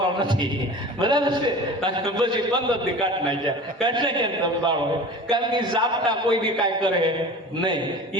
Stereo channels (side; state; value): both; normal; correlation 0.37